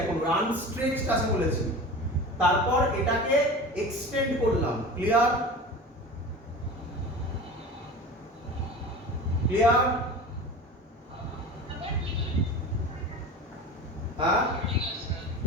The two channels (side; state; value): both; normal; correlation 0.34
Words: এখন, আনস্ট্রেচড আছে বলেছি, তারপর এটাকে এক্সটেন্ড করলাম। ক্লিয়ার? ক্লিয়ার? হ্যাঁ,